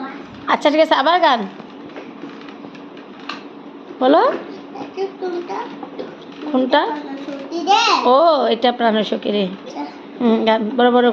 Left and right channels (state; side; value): identical; both; correlation 1.00